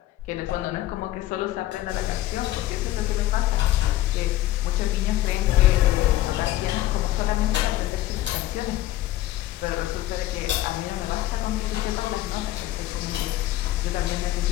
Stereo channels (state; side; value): quieter; right; 15.0 dB